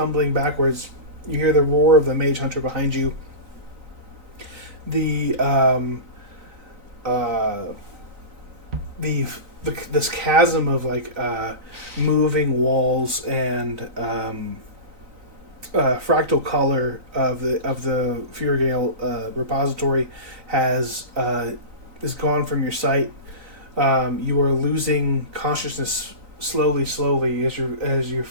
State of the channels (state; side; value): late; left; 3.9 ms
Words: backwards. You hear the roar of the mage hunter behind you. This chasm of like moving walls and fractal color of the Furgale repository is gone from your sight. You are losing consciousness slowly as your